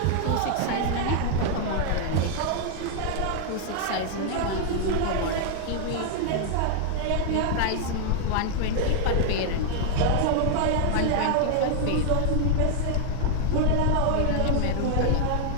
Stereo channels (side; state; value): both; different; correlation 0.00